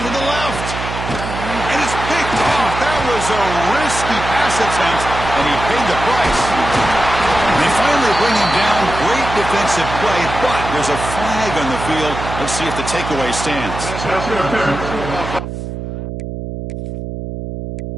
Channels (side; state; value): right; noise; hum, 7 dB below the sound